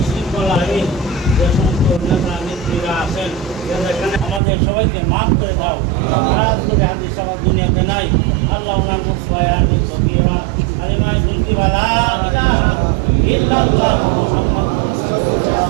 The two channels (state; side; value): drops out; left; at 4.4 s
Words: শৃঙ্খলাহীন যে সমস্ত নেতা নেত্রীরা আছেন এখানে আমাদের সবাইকে মাফ করে দাও করে হাদিস সবার দুনিয়াতে নাই আল্লাহ ওনার মুসফায়ানি সকিরা আলিমায় দুলকি বালা ইলাহা ইল্লাল্লাহ মুহাম্মাদুর